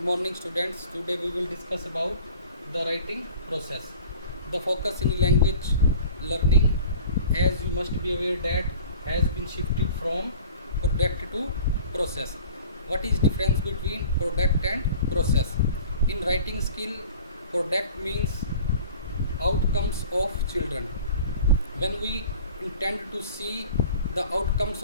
morning students. Today we will discuss about the writing process. The focus in language learning, as you must be aware, that has been shifted from product to process. What is difference between product and process? In writing skill, product means outcomes of children. When we intend to see the outcomes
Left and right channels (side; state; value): both; inverted; correlation -0.44